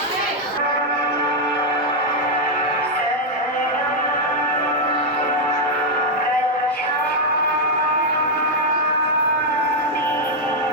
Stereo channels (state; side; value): normal; both; correlation 0.00